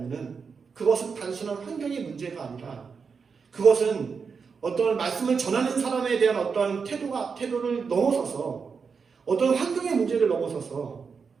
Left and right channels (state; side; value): quieter; left; 5.6 dB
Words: 그것은 단순한 환경의 문제가 아니라 그것은 어떤 말씀을 전하는 사람에 대한 어떤 태도를 넘어서서, 어떤 환경의 문제를 넘어서서